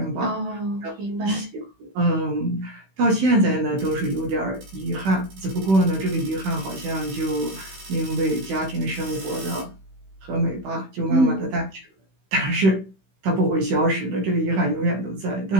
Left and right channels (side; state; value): left; late; 16 ms